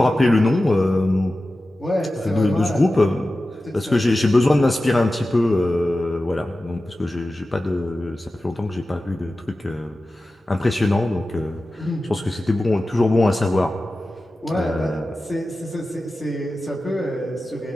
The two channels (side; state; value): both; normal; correlation 0.94